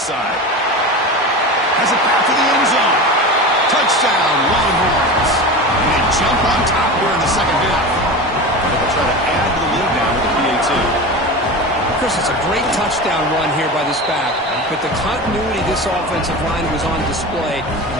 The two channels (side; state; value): both; normal; correlation 0.28